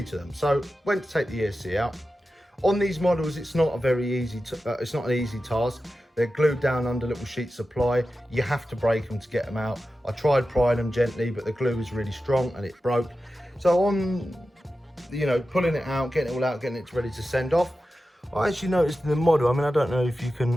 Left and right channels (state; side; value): normal; both; correlation 0.93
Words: to them. So went to take the ESC out. On these models, it's not a very easy, it's not an easy task. They're glued down under little sheets of ply. You have to break them to get them out. I tried prying them gently, but the glue was really strong and it broke. So on, you know, pulling it out, getting it all out, getting it ready to send off, I actually noticed in the model, I mean, I don't know if you